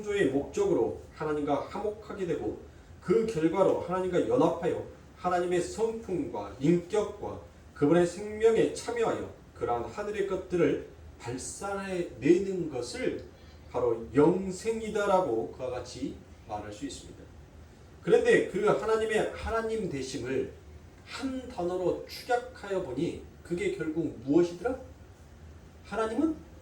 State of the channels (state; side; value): identical; both; correlation 1.00